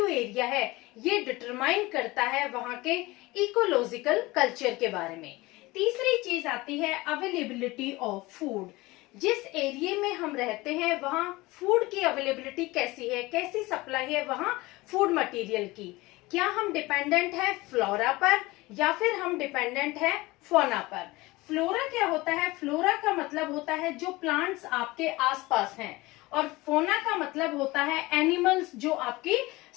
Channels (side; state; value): right; quieter; 21.0 dB